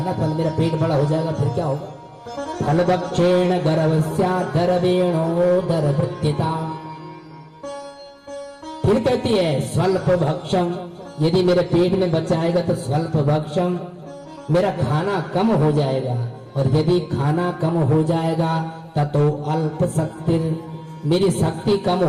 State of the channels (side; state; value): both; identical; correlation 1.00